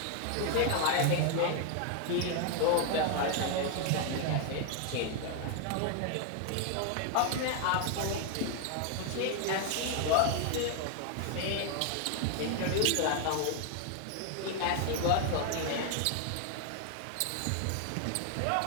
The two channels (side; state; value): both; different; correlation 0.00